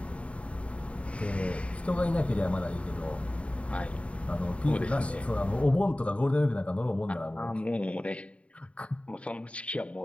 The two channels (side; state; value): right; late; 0.063 ms